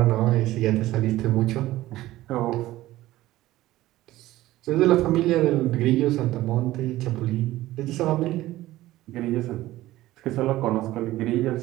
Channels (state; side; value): quieter; left; 16.2 dB